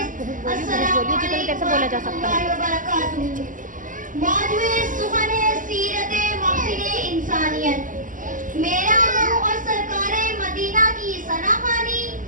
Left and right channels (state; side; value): late; left; 0.38 ms